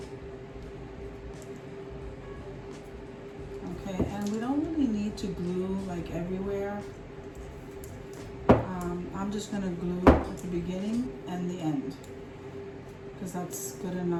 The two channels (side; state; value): both; identical; correlation 1.00